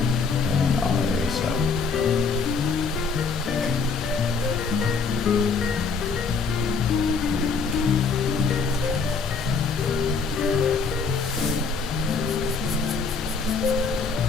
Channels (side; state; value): right; quieter; 5.1 dB